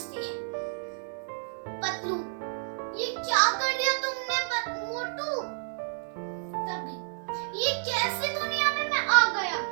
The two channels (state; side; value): silent; left; digital silence